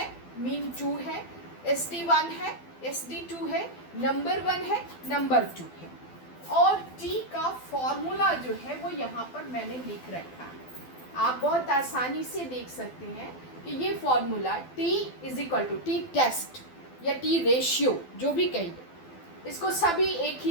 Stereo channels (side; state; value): right; late; 12 ms